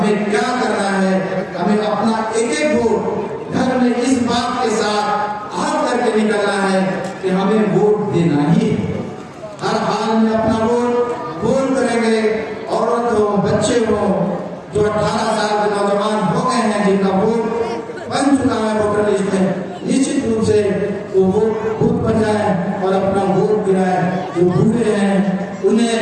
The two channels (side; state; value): both; identical; correlation 1.00